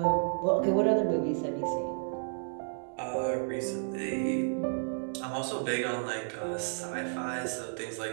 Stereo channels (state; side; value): silent; left; digital silence